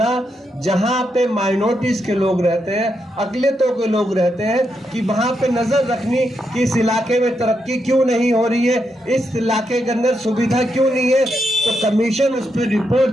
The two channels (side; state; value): both; normal; correlation 0.82